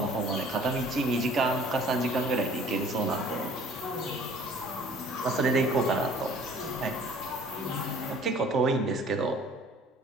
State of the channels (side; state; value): both; normal; correlation 0.52